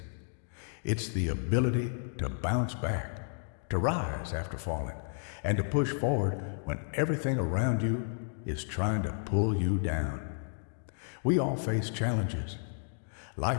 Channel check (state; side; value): silent; right; digital silence